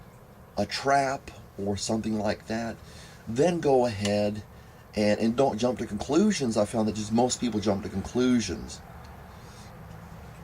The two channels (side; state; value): both; identical; correlation 1.00